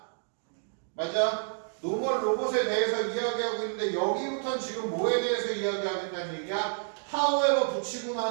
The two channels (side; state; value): left; silent; 58 dB below the other